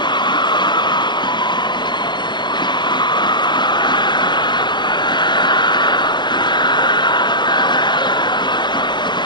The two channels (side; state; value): right; late; 0.22 ms